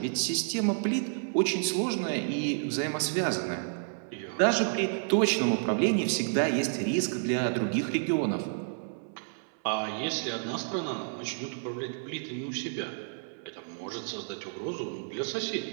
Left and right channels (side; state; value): left; silent; 58 dB below the other